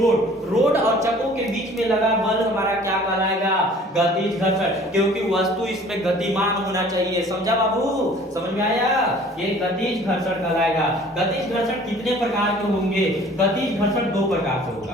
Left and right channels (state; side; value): normal; both; correlation 0.50